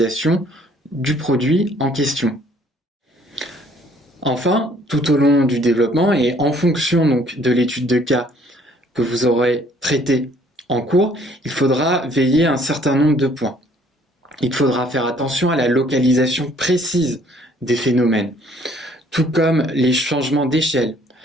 du produit en question. Enfin, tout au long du développement et en fonction donc de l'étude de cas que vous aurez traité en cours, il faudra veiller à un certain nombre de points. Il faudra faire attention à la localisation précise des phénomènes, tout comme les changements d'échelle.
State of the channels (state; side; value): normal; both; correlation 0.60